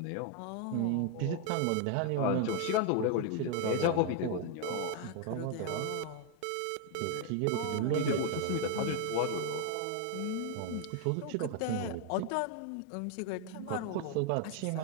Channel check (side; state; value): both; different; correlation 0.00